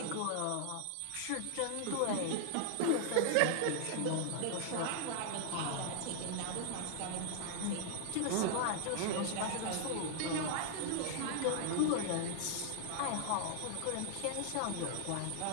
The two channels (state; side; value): different; both; correlation -0.01